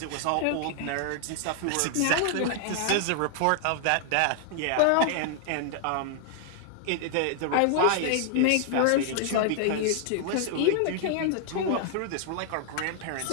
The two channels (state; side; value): different; both; correlation -0.01